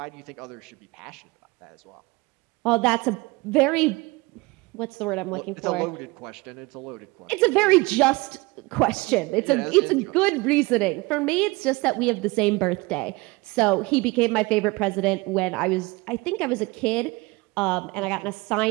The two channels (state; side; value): quieter; left; 23.7 dB